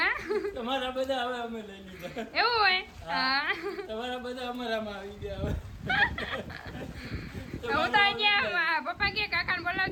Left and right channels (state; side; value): identical; both; correlation 1.00